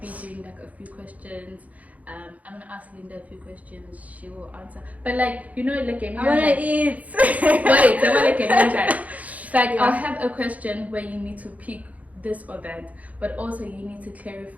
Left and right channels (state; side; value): late; left; 0.072 ms